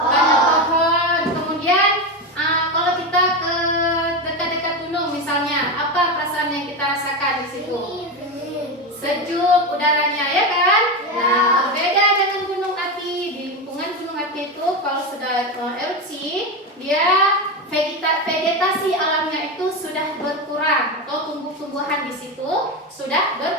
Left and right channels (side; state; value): both; normal; correlation 0.16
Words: pohon. Kemudian kalau kita ke dekat-dekat gunung misalnya, apa perasaan yang kita rasakan di situ? Sejuk udaranya, ya kan? Nah, berbeda dengan gunung api. Di lingkungan gunung api itu kalau sudah erupsi, dia vegetasi alamnya itu sudah berkurang, atau tumbuh-tumbuhan di situ sudah